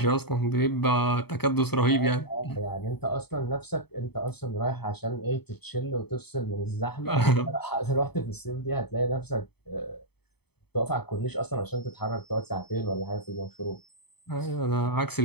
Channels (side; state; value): right; late; 0.97 ms